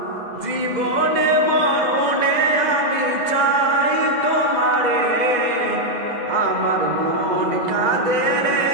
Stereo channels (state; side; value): late; left; 2.0 ms